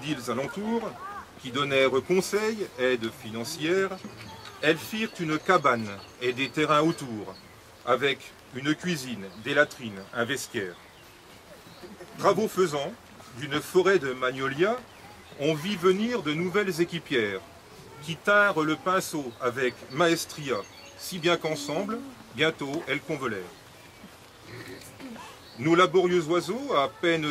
alentours, qui donnèrent conseils, aide financière, elles firent une cabane et des terrains autour, avec une cuisine, des latrines, un vestiaire. Travaux faisant, d'une forêt de magnolias, on vit venir de nouvelles équipières, qui tinrent le pinceau avec maestria, si bien qu'ensemble, bientôt, elles convolèrent. Nos laborieux oiseaux, à peine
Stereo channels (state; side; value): identical; both; correlation 1.00